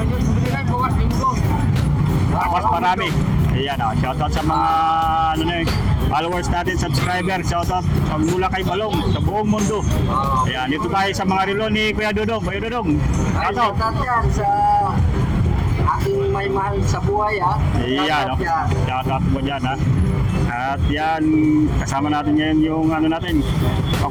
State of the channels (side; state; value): both; identical; correlation 1.00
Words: Tapos marami. Ayan, oh. Shoutout sa mga followers natin, subscriber. Shoutout mula kay Balong sa buong mundo. Ayan, dito tayo sa mga relo ni Kuya Dudong. Kuya Dudong, shoutout. Shoutout yan sa aking may mahal sa buhay, ha? Iyan, no? Shoutout mo dyan, ha? At yan, kasama natin ngayon yung ano natin.